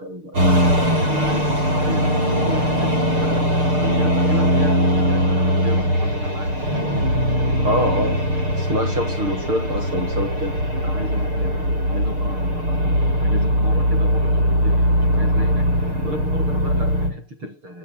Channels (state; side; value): late; left; 6.6 ms